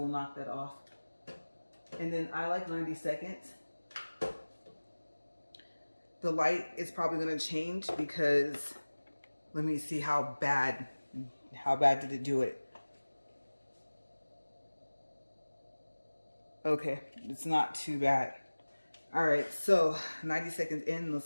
knock that off. And then I like 90 seconds. The light is probably going to change because let me see how bad did it do it. Okay, it's not too bad. All right, so 90 seconds in, let's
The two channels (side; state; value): both; inverted; correlation -1.00